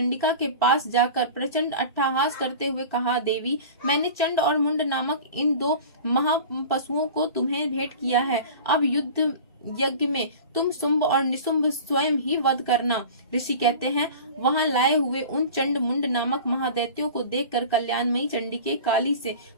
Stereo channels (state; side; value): inverted; both; correlation -0.37